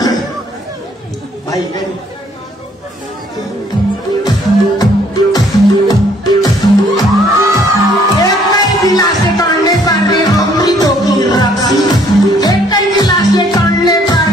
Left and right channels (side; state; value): both; normal; correlation 0.63